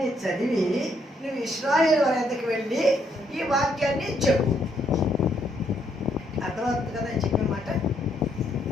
చదివి నువ్వు ఇశ్రాయేలు వారి యొద్దకు వెళ్ళి ఈ వాక్యాన్ని చెప్పు. అర్థమవుతుంది కదా అని చెప్పిన మాట.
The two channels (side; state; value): both; normal; correlation 0.72